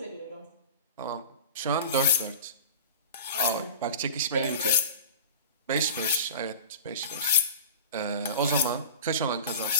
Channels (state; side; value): inverted; both; correlation -0.34